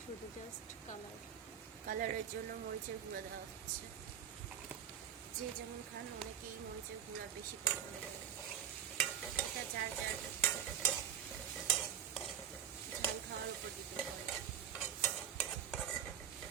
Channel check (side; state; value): left; quieter; 9.2 dB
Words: শুধু জাস্ট কালারের জন্য মরিচের গুঁড়া দেওয়া হচ্ছে। যে যেমন খান, অনেকেই মরিচের গুঁড়া বেশি পছন্দ করে, এটা যার যার ঝাল খাওয়ার উপর ডিপেন্ড করে।